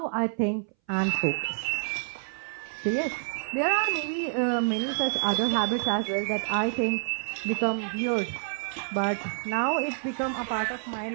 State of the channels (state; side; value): silent; left; 59 dB below the other